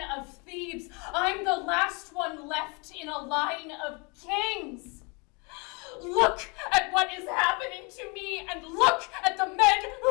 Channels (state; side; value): quieter; right; 30.9 dB